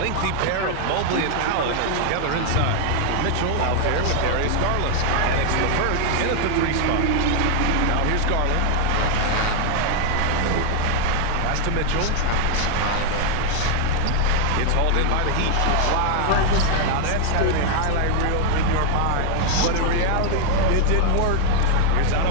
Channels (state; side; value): different; both; correlation 0.00